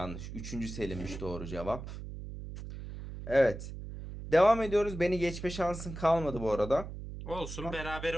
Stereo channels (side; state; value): right; noise; hum, 10 dB below the sound